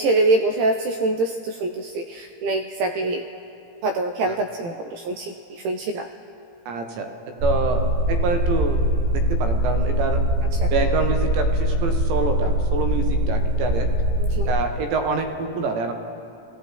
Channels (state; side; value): late; left; 18 ms